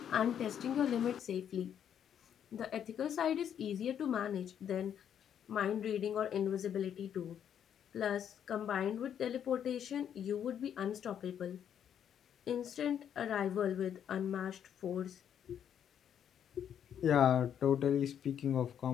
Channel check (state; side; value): quieter; right; 9.0 dB